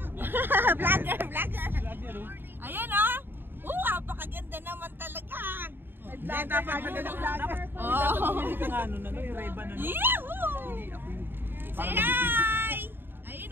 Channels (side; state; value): left; late; 0.099 ms